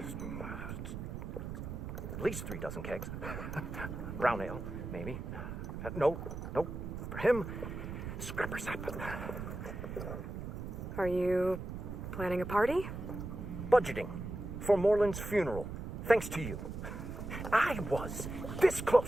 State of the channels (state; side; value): noise; right; rumble, 7 dB below the sound